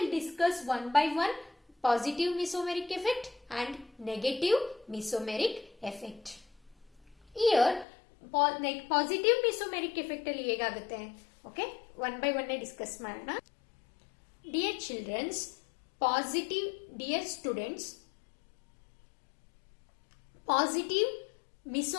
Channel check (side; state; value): right; drops out; at 7.9 s